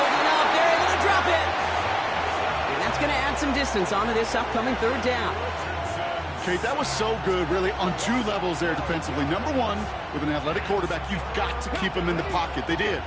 up. They're able to drop it. And that's going to add some distance onto this upcoming 3rd down. Okay, that was so good, really, on 2 levels there defensively. Number 1, with an athletic quarterback, you've got to keep him in the pocket. They did.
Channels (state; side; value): identical; both; correlation 1.00